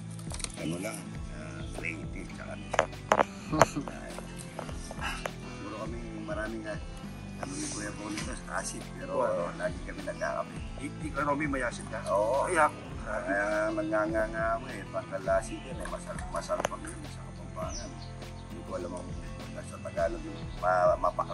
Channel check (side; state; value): both; identical; correlation 1.00